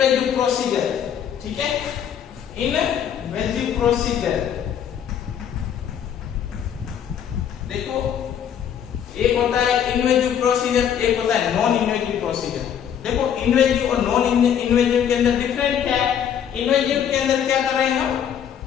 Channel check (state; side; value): quieter; right; 8.9 dB